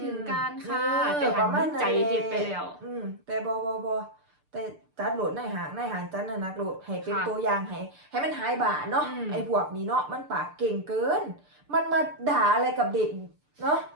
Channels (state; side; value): late; left; 6.7 ms